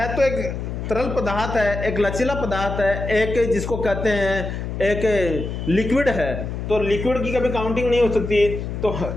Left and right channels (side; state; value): left; noise; hum, 5 dB below the sound